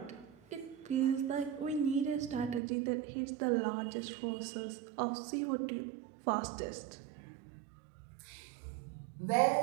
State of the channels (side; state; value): left; drops out; at 2.6 s